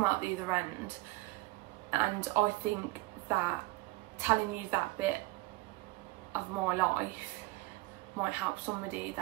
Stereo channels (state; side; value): quieter; left; 21.5 dB